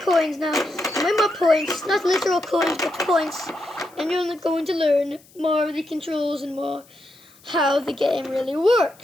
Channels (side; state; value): left; noise; hiss, 28 dB below the sound